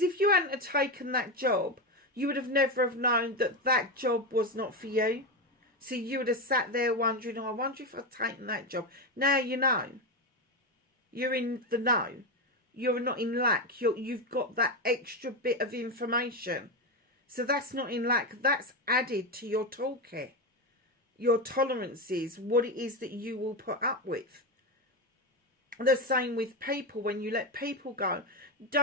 if you hadn't have taken that job, you would have never have known that that job was not for you. So you would have sat there wondering, oh, I wonder if I've taken that job. Now you know. You're in the know. You're not in lack. You've got that extra bit of information. So that's not in lack. That's added to your toolkit. Your tolerances, what it is that you will put up with. The same with people. When you let people go,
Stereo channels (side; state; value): both; normal; correlation 0.13